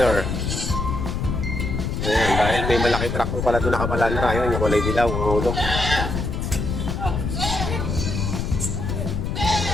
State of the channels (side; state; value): left; noise; rumble, 2 dB below the sound